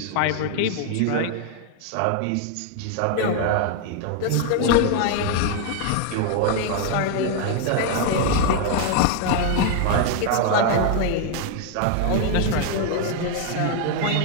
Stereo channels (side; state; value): both; different; correlation 0.00